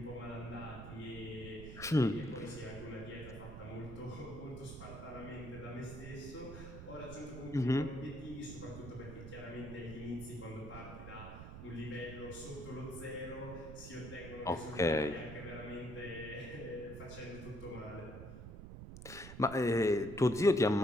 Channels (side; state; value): right; noise; rumble, 11 dB below the sound